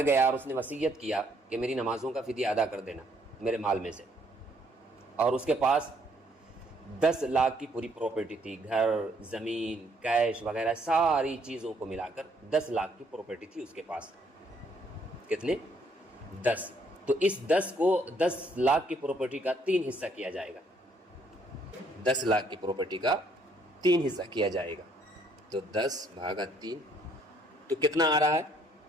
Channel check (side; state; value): both; normal; correlation 0.67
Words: گیا اور اس نے وصیت کیا کہ میری نمازوں کا فدیہ ادا کر دینا میرے مال میں سے، اور اس کے پاس 10 لاکھ کی پوری پراپرٹی تھی، گھر، زمین، کیش وغیرہ ساری چیزوں کو ملا کر 10 لاکھ کی پراپرٹی تھی اس کے پاس. کتنے؟ 10. تو اس 10 لاکھ کی پراپرٹی کا 3 حصہ کیا جائے گا. 10 لاکھ کی پراپرٹی کا 3 حصہ کیا جائے گا. تو 10/3 تو کتنا آ رہا ہے؟